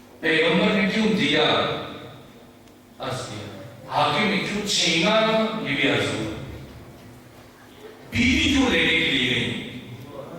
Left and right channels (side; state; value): both; identical; correlation 1.00